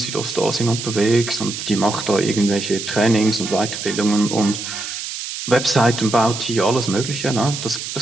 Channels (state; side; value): noise; right; hiss, 7 dB below the sound